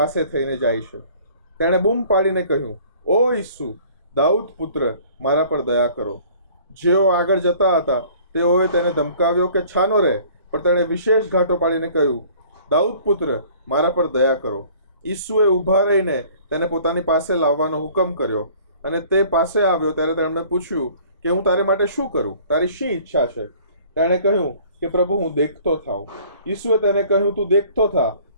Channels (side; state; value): both; inverted; correlation -0.52